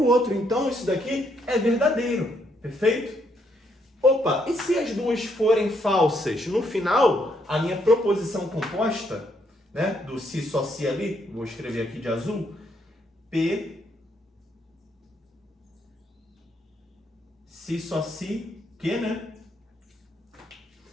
outro. Então, isso daqui é verdadeiro. Perfeito? Opa, e se as duas forem falsas? No final, a minha proposição composta, né, do se só se ali, vou escrever aqui de azul, P, se só se, que, né?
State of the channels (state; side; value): normal; both; correlation 0.74